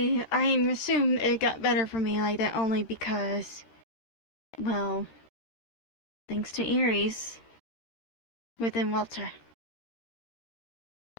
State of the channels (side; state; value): right; late; 13 ms